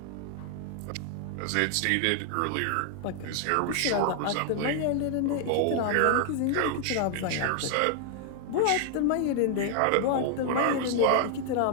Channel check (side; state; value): both; different; correlation 0.00